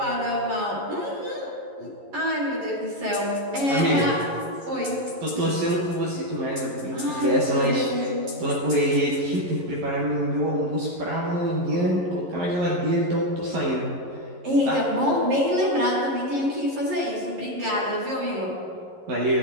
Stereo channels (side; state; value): left; late; 11 ms